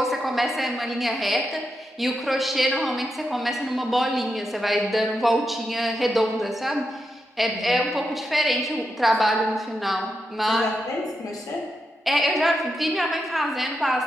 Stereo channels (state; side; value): normal; both; correlation 0.85